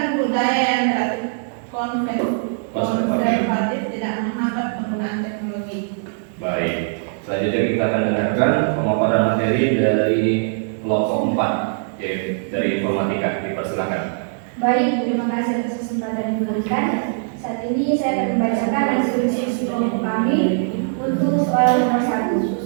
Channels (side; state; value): left; silent; 63 dB below the other